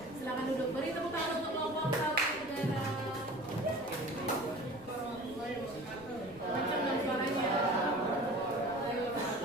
silakan duduk. Beri tepuk tangan untuk kelompok Taruhan Negara. Macam dong suaranya.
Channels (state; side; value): noise; left; rumble, 21 dB below the sound